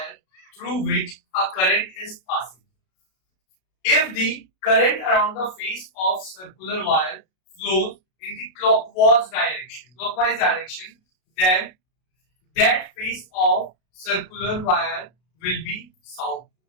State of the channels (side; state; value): right; late; 32 ms